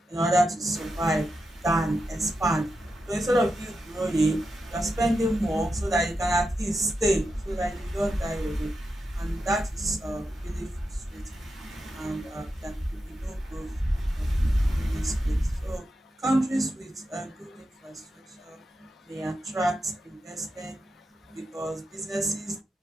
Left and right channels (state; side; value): normal; both; correlation 0.88